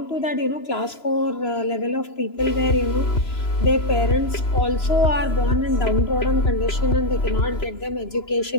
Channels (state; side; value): late; right; 3.0 ms